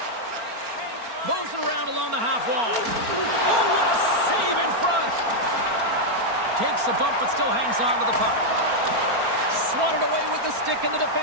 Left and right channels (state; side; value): late; left; 4.4 ms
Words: Moves it around along the half wall. Oh, what a save in front. Takes a bump but still hangs on to the puck. Swatted away with the stick in the